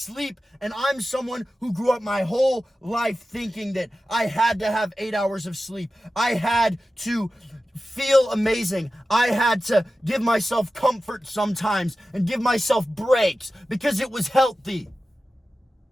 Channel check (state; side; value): normal; both; correlation 0.94